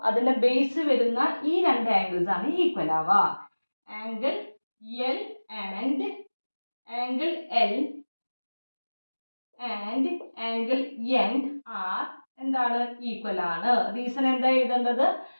അതിൻ്റെ ബേസ് വരുന്ന ഈ രണ്ട് ആംഗിൾസ് ആണ് ഈക്വൽ ആവുക. Angle L and angle L and angle N are എന്താണ് ഈക്വൽ ആണ്. റീസൺ എന്താ എഴുതേണ്ടത്,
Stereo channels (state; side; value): inverted; both; correlation -1.00